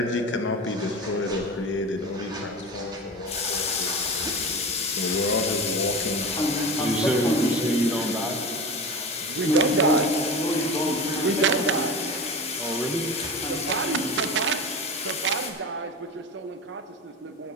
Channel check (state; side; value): normal; both; correlation 0.29